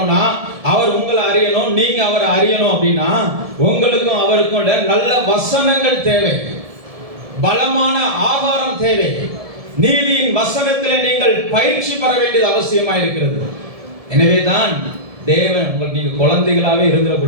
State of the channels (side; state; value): left; late; 1.7 ms